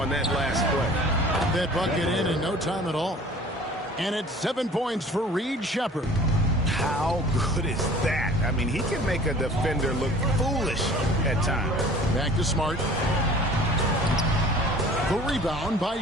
on that last play. That bucket in no time at all. And it's 7 points for Reed Sheppard. How good is that? I mean, he can make a defender look foolish at times. Back to Smart. The rebound by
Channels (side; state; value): both; normal; correlation 0.47